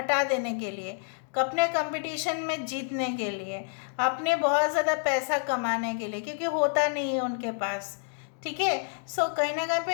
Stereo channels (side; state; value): right; silent; 59 dB below the other